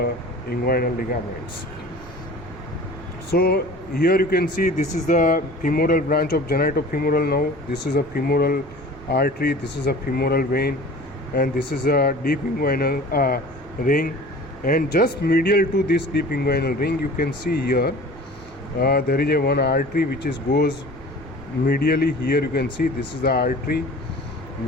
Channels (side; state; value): both; normal; correlation 0.43